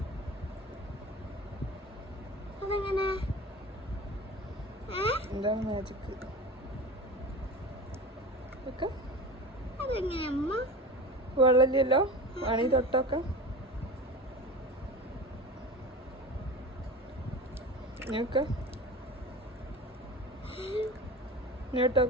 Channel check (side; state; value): both; normal; correlation 0.33